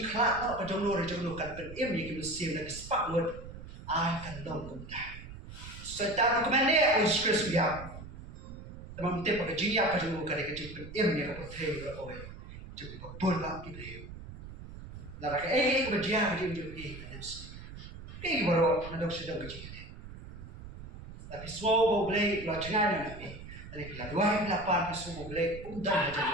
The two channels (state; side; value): noise; right; rumble, 13 dB below the sound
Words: kelak tak kejong nur kan emi kimusim nang spak word. Akan long kuda. Setan kemana? Uskres biar. Teman kita pakai jiak kejung kali kejung ni apa theu berapa? Jadi berpulak kita. Lara ke berjiak kejung kan mesti. Baru nak sedang kejung. Tapi semua BLEI lo jangan nak. Dari bila 2008 semua BLEI undang